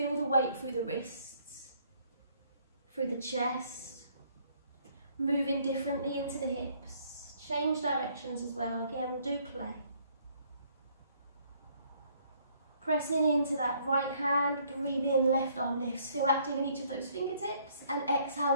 the weight through the wrists, through the chest, moving differently into the hips. Change directions as well, again, do play. Pressing into that right hand, breathe in, left arm lifts. Feel active in each of those fingertips. And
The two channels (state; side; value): inverted; both; correlation -0.65